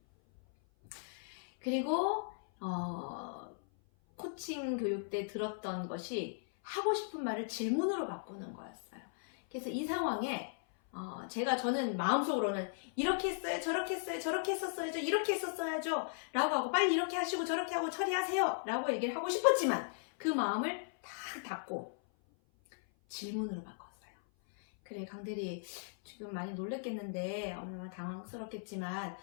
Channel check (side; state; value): right; silent; 53 dB below the other